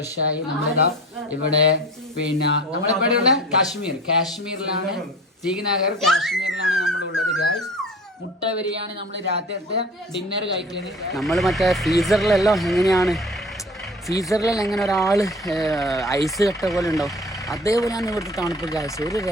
നമ്മളിതാ ഇവിടെ, പിന്നെ നമ്മളിവിടെയുള്ള കാശ്മീരിലാണ്, ശ്രീനഗർ കാശ്മീരിലാണ് നമ്മളുള്ളത് ഗായ്സ്. മുട്ട ബിരിയാണി നമ്മൾ രാത്രിയത്തെ ഡിന്നർ കഴിക്കുന്നത്. നമ്മൾ മറ്റേ ഫ്രീസറിലെല്ലാം എങ്ങനെയാണ്, ഫ്രീസറിലെല്ലാം എങ്ങനെ ഒരാൾ ഐസ് കട്ട പോലെ ഉണ്ടാവും, അതേപോലെയാണ് ഇവിടുത്തെ തണുപ്പ് ഗായ്സ്. ഒരു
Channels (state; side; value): normal; both; correlation 0.41